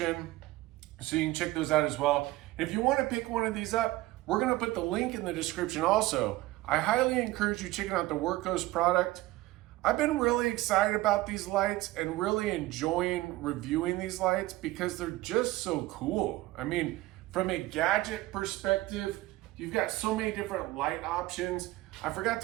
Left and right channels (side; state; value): left; quieter; 18.1 dB